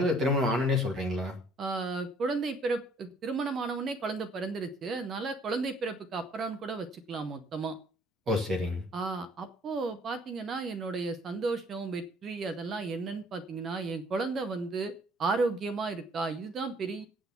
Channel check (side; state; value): both; normal; correlation 0.60